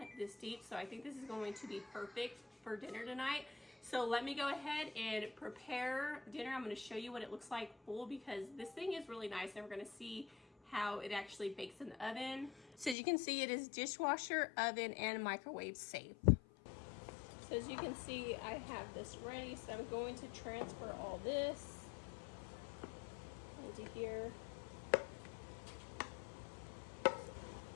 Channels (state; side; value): drops out; right; at 13.0 s